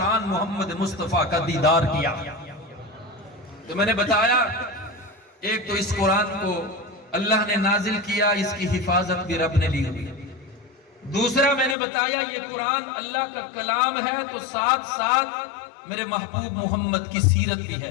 محمد مصطفیٰ کا دیدار کیا۔ تو میں نے بتایا ایک تو اس قرآن کو اللہ نے نازل کیا، اس کی حفاظت بھی رب نے لی ہوئی۔ دوسرا میں نے بتایا یہ قرآن اللہ کا کلام ہے تو ساتھ ساتھ میرے محبوب محمد کی سیرت بھی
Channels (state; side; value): drops out; right; at 11.8 s